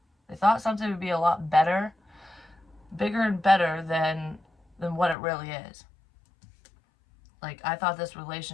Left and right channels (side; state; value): right; drops out; at 5.2 s